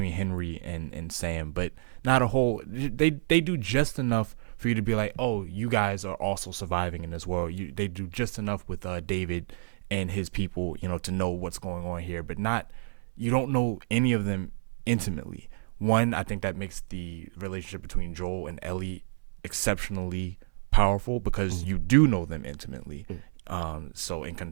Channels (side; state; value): left; silent; 58 dB below the other